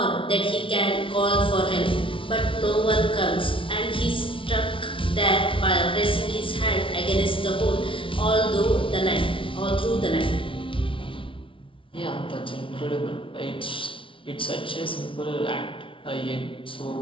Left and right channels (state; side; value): late; right; 0.25 ms